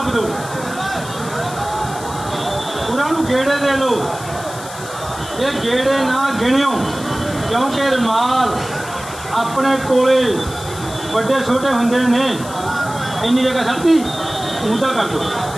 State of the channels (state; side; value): noise; left; hiss, 14 dB below the sound